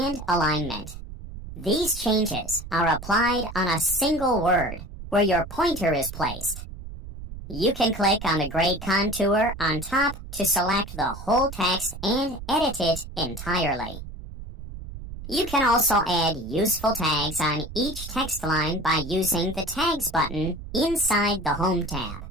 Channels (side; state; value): right; noise; rumble, 11 dB below the sound